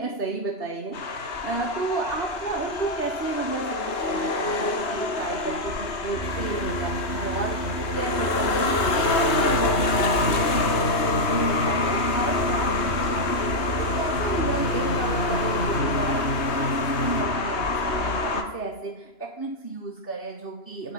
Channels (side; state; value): right; late; 3.2 ms